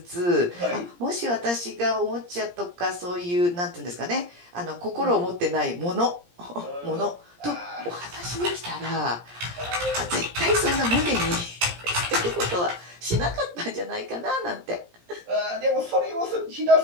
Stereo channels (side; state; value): left; late; 17 ms